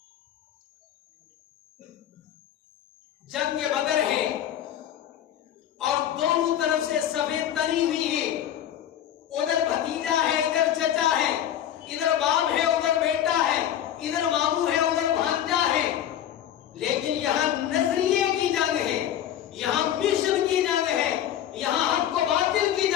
جنگ بدر ہے اور دونوں طرف سے صفیں تنی ہوئی ہیں، ادھر بھتیجا ہے، ادھر چچا ہے، ادھر باپ ہے، ادھر بیٹا ہے، ادھر ماموں ہے، ادھر بھانجا ہے، لیکن یہاں نظریے کی جنگ ہے، یہاں مشن کی جنگ ہے، یہاں حق و باطل کی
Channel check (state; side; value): quieter; right; 10.8 dB